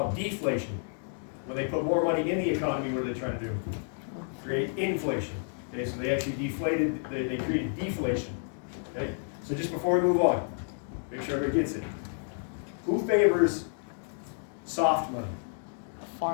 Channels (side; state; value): right; silent; 58 dB below the other